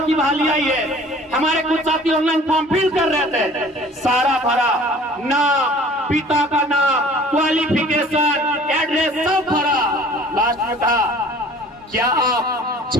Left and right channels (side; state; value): both; normal; correlation 0.49